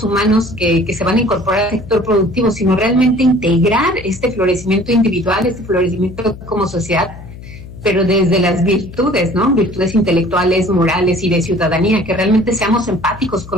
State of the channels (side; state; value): left; noise; hum, 15 dB below the sound